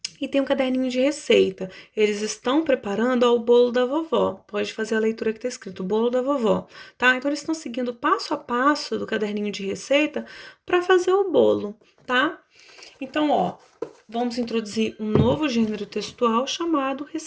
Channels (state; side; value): identical; both; correlation 1.00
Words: e tem um caderninho de receita. Eles estão preparando o bolo da vovó. Pode fazer a leitura que está escrito, bolo da vovó, tá? Então, eles estão seguindo passo a passo do caderninho de receita para fazer o bolo, tá? Então, ó, vamos introduzir um novo gênero textual chamado